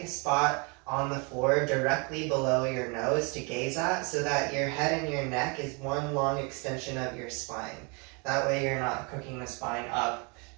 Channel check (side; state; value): left; quieter; 32.3 dB